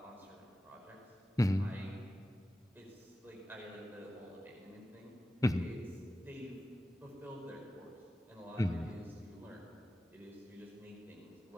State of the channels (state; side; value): normal; both; correlation 0.93